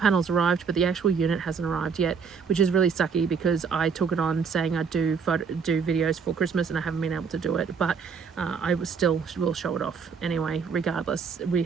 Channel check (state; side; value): quieter; left; 6.0 dB